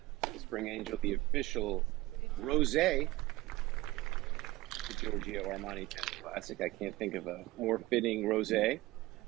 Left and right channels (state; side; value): quieter; left; 18.7 dB